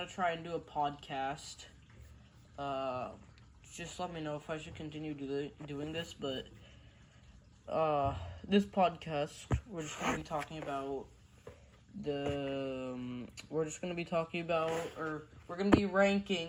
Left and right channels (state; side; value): identical; both; correlation 1.00